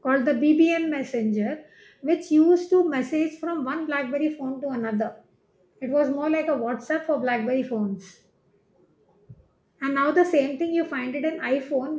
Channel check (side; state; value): both; identical; correlation 1.00